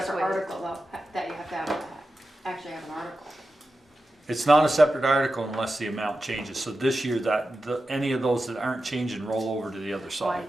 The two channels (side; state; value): both; normal; correlation 0.92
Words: separate waived. article though, that you have to have, actually have an article. It's not a separate article unless the amount changes. So this year any of those that aren't changing roll over to the other side.